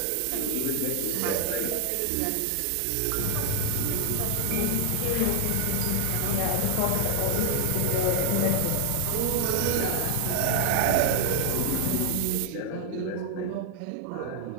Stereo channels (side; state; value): both; different; correlation 0.00